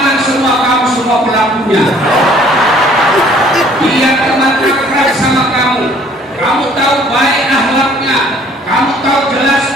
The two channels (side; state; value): both; normal; correlation 0.57